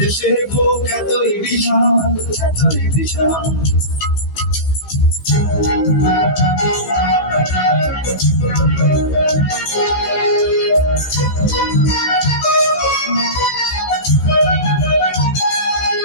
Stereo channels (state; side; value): late; right; 15 ms